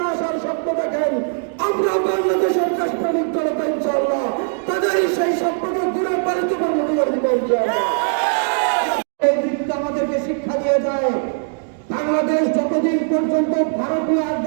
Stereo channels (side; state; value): left; silent; digital silence